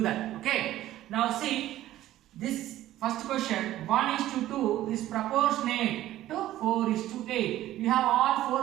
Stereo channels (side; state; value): left; quieter; 14.1 dB